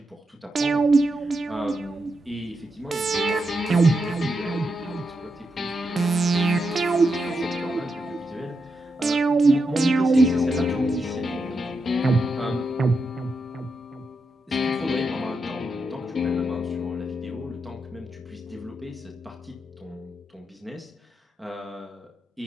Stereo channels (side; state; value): both; normal; correlation 0.85